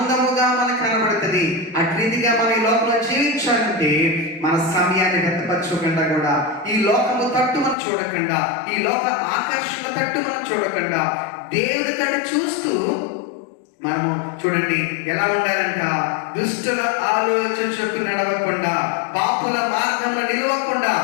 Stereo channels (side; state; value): right; drops out; at 7.8 s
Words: మనకు కనబడుతుంది. అటు రీతిగా మనం ఈ లోకంలో జీవించాలంటే మన సమయాన్ని వ్యర్థపరచకుండా, కూడా ఈ లోకము తట్టు మనం చూడకుండా, ఈ లోక ఆకర్షణ తట్టు మనం చూడకుండా, దేవుని తట్టు చూస్తూ మనము చూడండి ఎలా ఉండాలంట? దుష్టుల ఆలోచన చెప్పు నడవకుండా, పాపుల మార్గంలో నిలవకుండా,